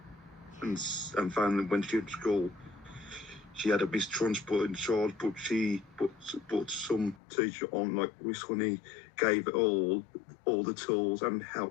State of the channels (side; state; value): right; drops out; at 7.2 s